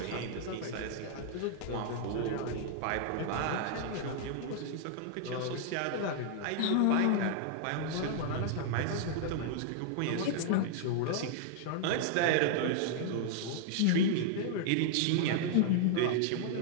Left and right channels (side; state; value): both; different; correlation -0.01